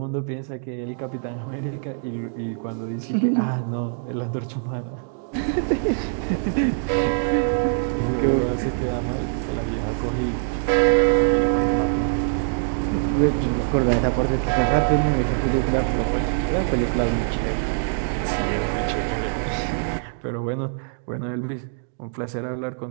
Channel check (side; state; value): left; silent; digital silence